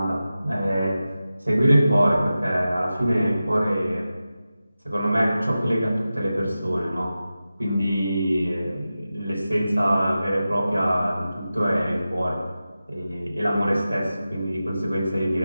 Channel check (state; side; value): inverted; both; correlation -0.93